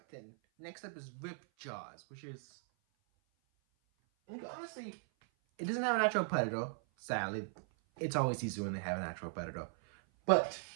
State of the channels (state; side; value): silent; left; 52 dB below the other